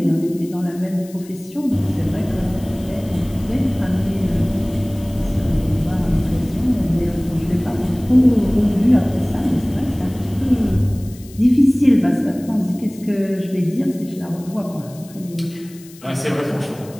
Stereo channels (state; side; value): noise; left; hiss, 22 dB below the sound